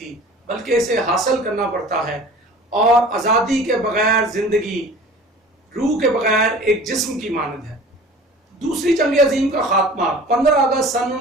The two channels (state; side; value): normal; both; correlation 0.43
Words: بلکہ اسے حاصل کرنا پڑتا ہے، اور آزادی کے بغیر زندگی روح کے بغیر ایک جسم کی مانند ہے۔ دوسری جنگ عظیم کا خاتمہ 15 اگست سن